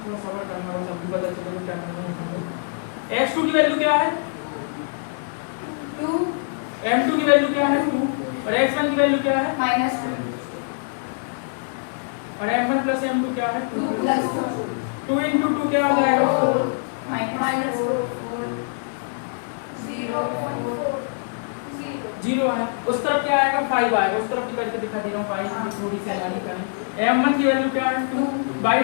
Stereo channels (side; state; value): right; silent; digital silence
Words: थोड़ा सबर करना होगा, सबको पता चलेगा क्या करना है। x2 की वैल्यू क्या है 2 m2 की वैल्यू क्या है 2 और x1 की वैल्यू क्या है -2 और m1 प्लस m2 क्या है 2 + 2 into 2 क्या हो जाएगा 4 0 आया। उस तरफ क्या आएगा 5 आएगा, उस तरफ भी करके दिखा दे रहा हूँ 5 की थोड़ी सी लानी करें। m1 की वैल्यू क्या है 2,